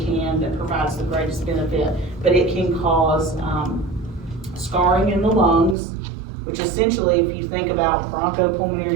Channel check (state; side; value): drops out; left; at 5.8 s